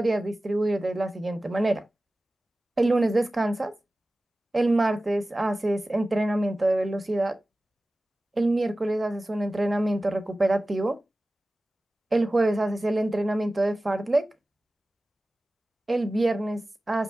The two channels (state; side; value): normal; both; correlation 0.96